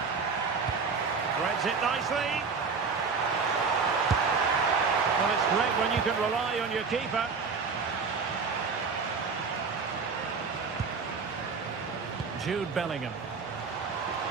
Threads it nicely. Well, it's great when you can rely on your keeper. Jude Bellingham.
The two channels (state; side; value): quieter; left; 5.1 dB